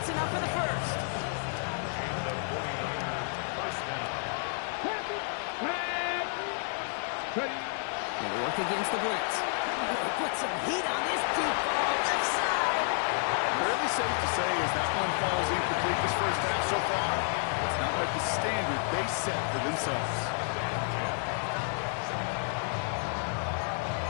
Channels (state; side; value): silent; right; 56 dB below the other